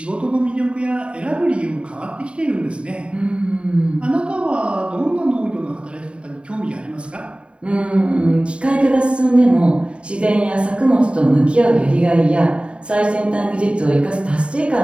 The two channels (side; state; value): left; late; 0.057 ms